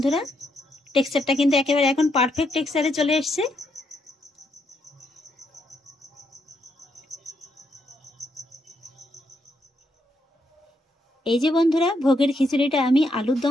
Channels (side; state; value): both; normal; correlation 0.77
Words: টেক্সচারটা কিন্তু একেবারে এখন পারফেক্ট টেক্সচারে চলে এসছে। এই যে বন্ধুরা, ভোগের খিচুড়িটা আমি আলুর